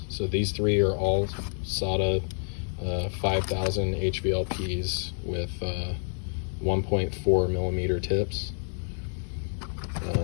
so these three are all SATA 5000 HVLPs with 1.4 millimeter tips.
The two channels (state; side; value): silent; right; digital silence